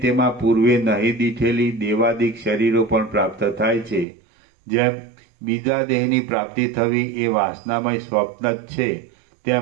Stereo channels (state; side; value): drops out; left; at 4.0 s